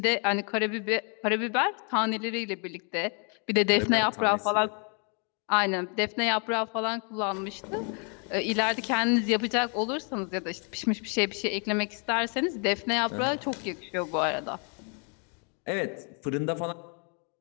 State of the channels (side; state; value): right; quieter; 37.7 dB